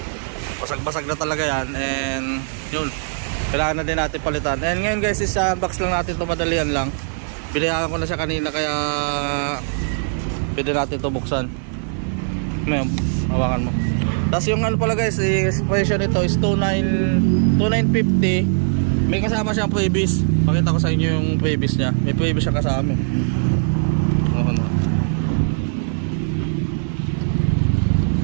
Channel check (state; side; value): silent; left; digital silence